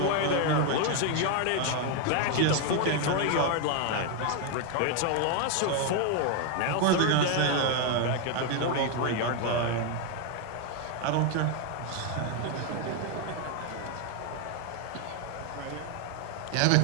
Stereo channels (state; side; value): different; both; correlation 0.01